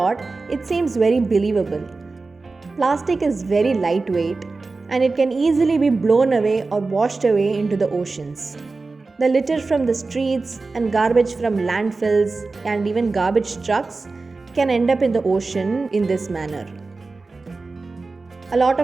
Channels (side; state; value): left; quieter; 3.8 dB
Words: it seems very believable. Plastic is very lightweight and it can easily be blown away or washed away into the oceans. The litter from the streets and garbage from landfills and even garbage trucks can end up in the ocean in this manner. A lot